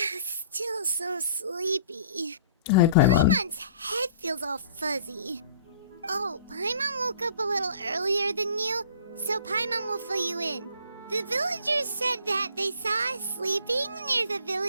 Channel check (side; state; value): both; inverted; correlation -0.52